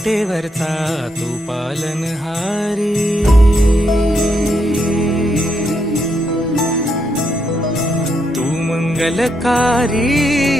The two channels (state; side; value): normal; both; correlation 0.78